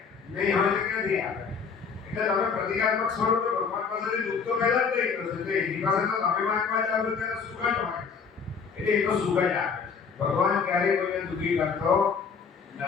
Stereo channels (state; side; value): quieter; right; 5.8 dB